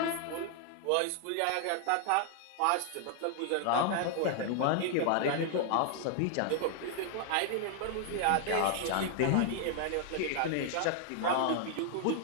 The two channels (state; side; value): different; both; correlation 0.00